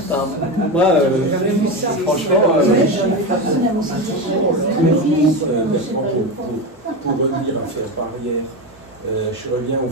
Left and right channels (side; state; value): both; normal; correlation 0.18